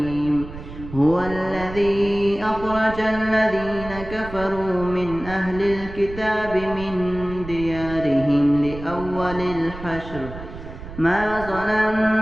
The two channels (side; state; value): right; noise; rumble, 12 dB below the sound